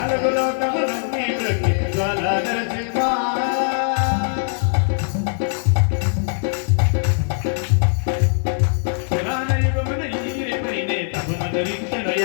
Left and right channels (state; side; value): silent; right; digital silence